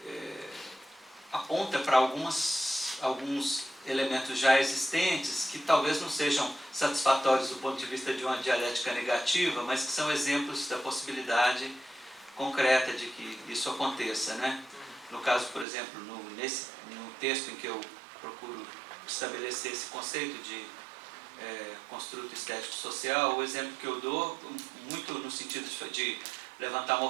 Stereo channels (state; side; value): drops out; left; at 15.7 s